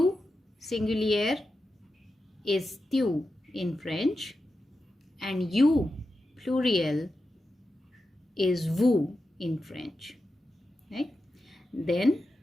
singulier, is tu in French, and you, plural, is vous in French. Right? Then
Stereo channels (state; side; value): normal; both; correlation 0.90